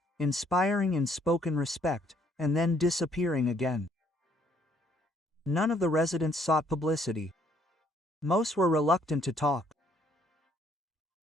inspiring in spoken respect, and then disappearing again. None of the residents sought publicity. Most were reluctant to talk.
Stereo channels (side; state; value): both; normal; correlation 0.66